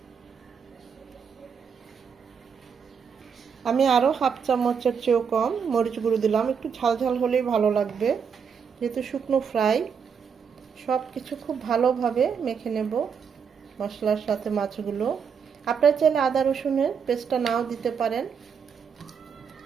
আমি আরও হাফ চামচের চেয়েও কম মরিচ গুঁড়ো দিলাম। একটু ঝাল ঝাল হলেই ভালো লাগবে, যেহেতু শুকনো ফ্রাই। সব কিছু খুব ভালোভাবে মেখে নেব মশলার সাথে মাছগুলো। আপনারা চাইলে আদা রসুনের পেস্টটা নাও দিতে পারেন,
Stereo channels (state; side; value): quieter; left; 6.6 dB